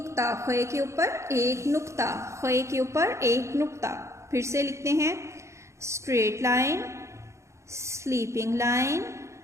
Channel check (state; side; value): late; left; 0.14 ms